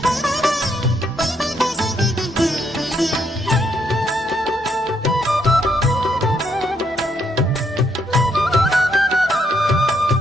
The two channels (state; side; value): normal; both; correlation 0.74